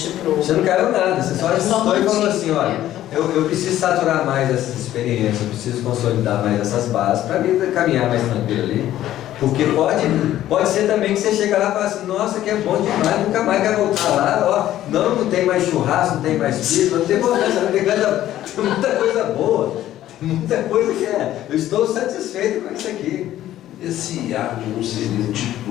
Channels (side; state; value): right; quieter; 13.1 dB